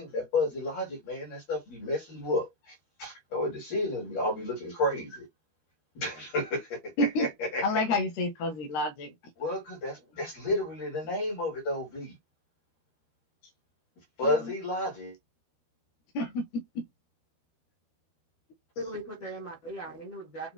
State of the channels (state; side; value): late; right; 13 ms